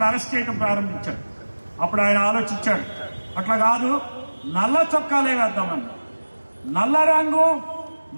అరెస్ట్ చేయడం ప్రారంభించారు. అప్పుడు ఆయన ఆలోచించాడు, అట్లా కాదు, నల్ల చొక్కాలే వేద్దామని. నల్ల రంగు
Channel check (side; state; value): both; inverted; correlation -1.00